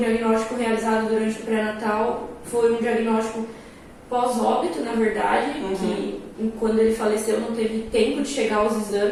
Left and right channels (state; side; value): identical; both; correlation 1.00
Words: realizado durante o pré-natal, foi um diagnóstico pós-óbito, na verdade, que quando ele faleceu não teve tempo de chegar aos